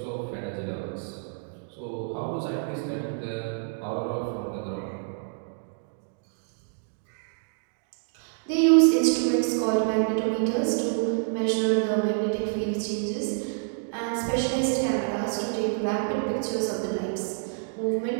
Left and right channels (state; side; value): silent; left; digital silence